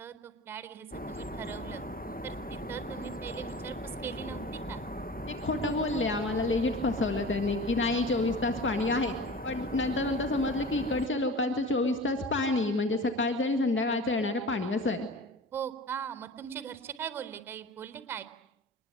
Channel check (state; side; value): normal; both; correlation 0.37